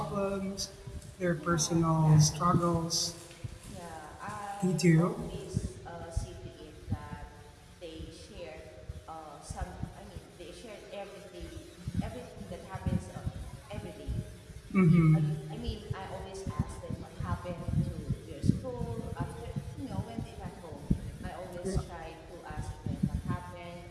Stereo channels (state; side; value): identical; both; correlation 1.00